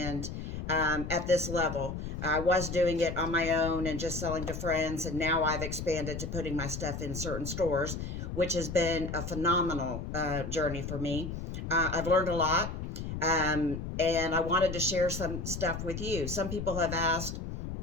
at this level. I was doing it on my own and just selling to friends, and now I've expanded to putting my stuff in certain stores, which has been a phenomenal journey for me. I've learned a lot, and I wanted to share some stuff with you. Some people have asked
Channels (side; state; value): left; noise; rumble, 6 dB below the sound